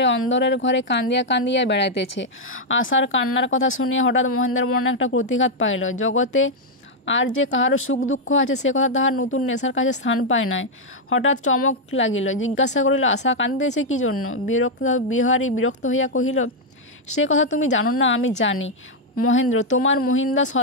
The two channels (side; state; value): both; normal; correlation -0.01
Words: অন্দরের ঘরে কান্দিয়া কান্দিয়া বেড়াইতেছে। আশার কান্নার কথা শুনিয়া হঠাৎ মহেন্দ্রের মনে একটা প্রতিঘাত পাইল। জগতে আর যে কাহারও সুখ দুঃখ আছে সে কথা তাহার নতুন নেশার কাছে স্থান পায় নাই। হঠাৎ চমক লাগিল। জিজ্ঞাসা করিল, আশা কান্দিতেছে কি জন্য? বিহারী বিরক্ত হইয়া কহিল, সে কথা তুমি জানো না, আমি জানি। মহেন্দ্র, তোমার মহিন্দা